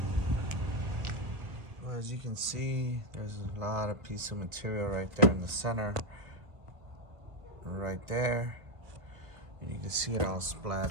Well, as you can see, there's a lot of piece of material right there in the center. Right there. And you can see it all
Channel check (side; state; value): left; late; 1.3 ms